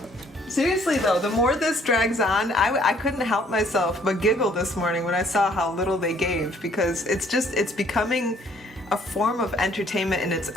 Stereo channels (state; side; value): normal; both; correlation 0.62